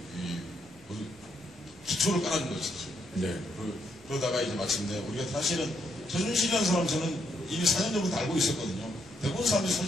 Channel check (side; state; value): both; normal; correlation 0.76